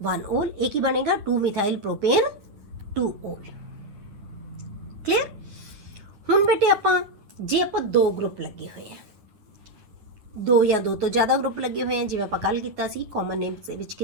1 올, ਇਹ ਕੀ ਬਣੇਗਾ 2 ਮਿਥਾइल प्रोपेन 2 올। ਕਲੀਅਰ? ਹੁਣ ਬੇਟੇ ਆਪਾਂ ਜੇ ਆਪਾਂ 2 ਗਰੁੱਪ ਲੱਗੇ ਹੋਏ ਆ, 2 ਜਾਂ 2 ਤੋਂ ਜ਼ਿਆਦਾ ਗਰੁੱਪ ਲੱਗੇ ਹੋਏ ਆ, ਜਿਵੇਂ ਆਪਾਂ ਕੱਲ ਕੀਤਾ ਸੀ ਕਾਮਨ ਨੇਮਸ ਦੇ ਵਿੱਚ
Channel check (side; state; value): left; late; 9.7 ms